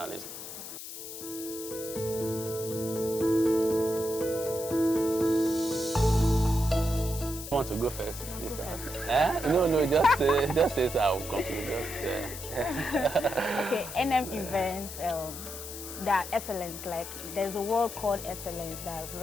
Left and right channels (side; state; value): left; noise; hiss, 10 dB below the sound